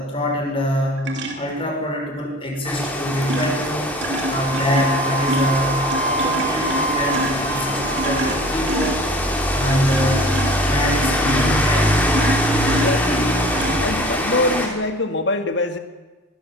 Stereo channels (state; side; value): normal; both; correlation 0.43